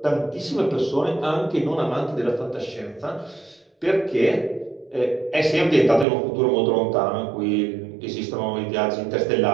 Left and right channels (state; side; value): drops out; left; at 6.1 s